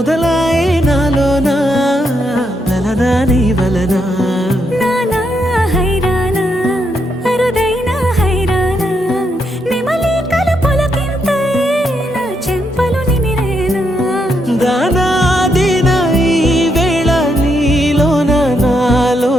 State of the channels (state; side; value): normal; both; correlation 0.79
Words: నాలోనా లలనా నీ వలనా నానా హైరానా అరుదైన హైరానా నెమలి కలుపులకింతై నా చెంపలు నిమిరేనా దానా దినా ఈ వేళ నీలోన